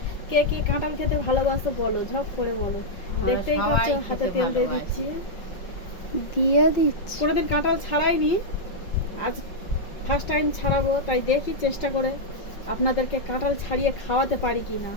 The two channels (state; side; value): late; right; 5.5 ms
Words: কে কে কাঁঠাল খেতে ভালোবাসো বলো, ঝপ করে বলো। দেখতেই পাচ্ছ হাতে তেল দিয়ে দিচ্ছি। দিয়ে দিচ্ছি। কোনোদিন কাঁঠাল ছাড়াইনি, আজ ফার্স্ট টাইম ছাড়াবো, তাই দেখি চেষ্টা করে আপনাদেরকে কাঁঠাল ছাড়িয়ে খাওয়াতে পারি কি না।